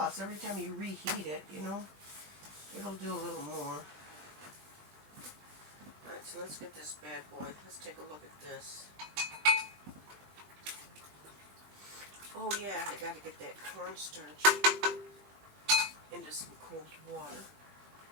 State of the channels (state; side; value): late; left; 20 ms